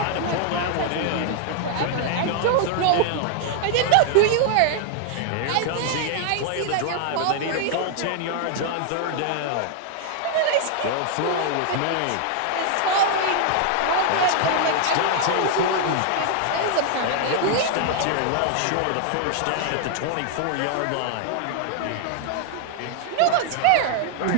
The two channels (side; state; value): both; different; correlation 0.00